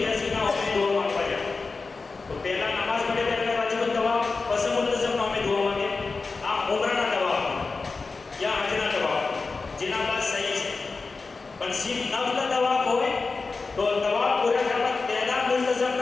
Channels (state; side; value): quieter; right; 4.1 dB